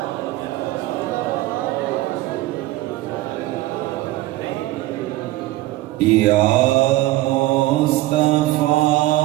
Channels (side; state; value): left; quieter; 17.3 dB